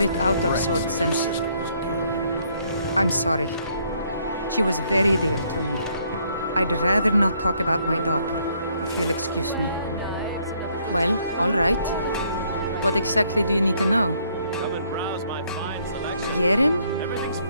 out of sorts since... I'm sorry. She was very dear to me. I'd rather not talk about my daughter, if you'll excuse me. Well, all right. What exactly do you need to know? Come and browse my fine selection. Hijerm? Everything's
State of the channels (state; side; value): inverted; both; correlation -0.68